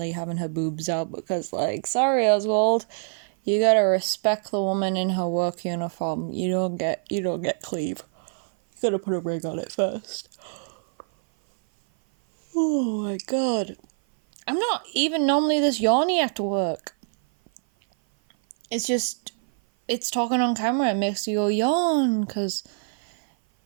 having her boobs out, because, like, sorry, Oswald, you gotta respect the woman in her work uniform. You don't get cleave. You gotta put a ring on it first. Oh my god. I'm not even normally this yawny after work. It's just, it's talking on camera, it makes you go yawn, because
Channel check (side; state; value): left; silent; 56 dB below the other